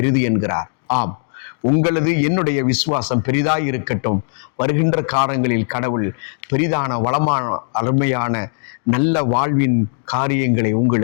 என்கிறார். ஆம், உங்களது என்னுடைய விசுவாசம் பெரிதாய் இருக்கட்டும். வருகின்ற காலங்களில் கடவுள் பெரிதான, வளமான, அருமையான நல்ல வாழ்வின் காரியங்களை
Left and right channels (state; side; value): silent; right; digital silence